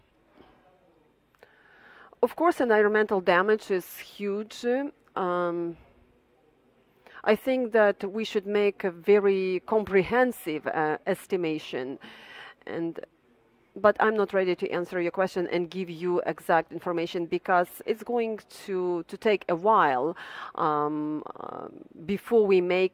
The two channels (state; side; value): identical; both; correlation 1.00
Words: Of course, environmental damage is huge. I think that we should make a very comprehensive estimation, and But I'm not ready to answer your question and give you exact information because it's going to take a while before we